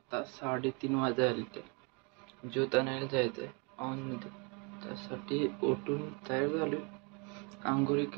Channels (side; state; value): left; quieter; 32.7 dB